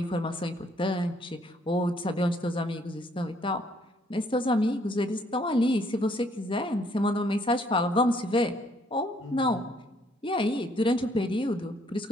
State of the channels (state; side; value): normal; both; correlation 0.66